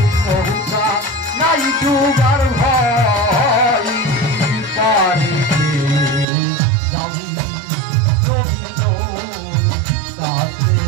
নৌকা নাই ডুবার ভয় পারে যাবি রবীন্দ্র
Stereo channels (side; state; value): left; drops out; at 6.2 s